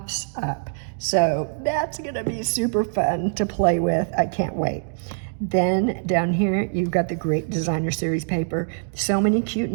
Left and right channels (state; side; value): silent; left; digital silence